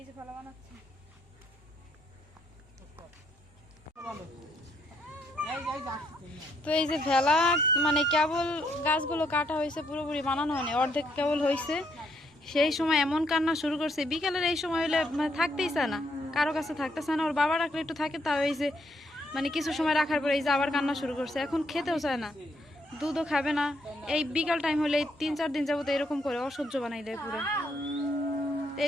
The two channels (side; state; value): both; normal; correlation 0.74